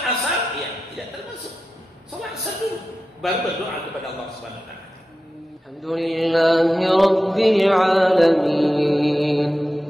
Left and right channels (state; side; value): normal; both; correlation 0.92